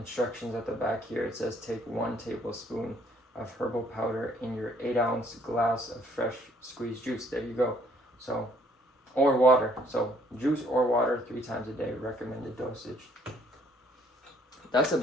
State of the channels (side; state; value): both; normal; correlation 0.63